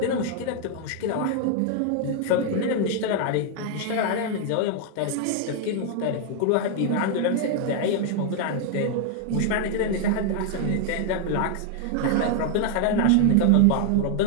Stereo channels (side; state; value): both; different; correlation 0.00